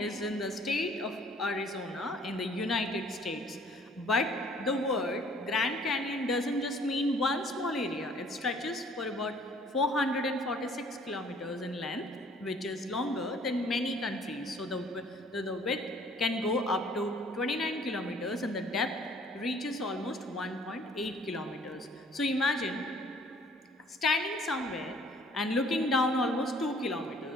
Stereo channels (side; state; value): both; normal; correlation 0.57